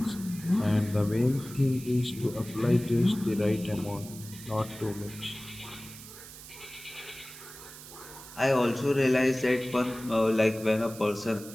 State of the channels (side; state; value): right; noise; hiss, 16 dB below the sound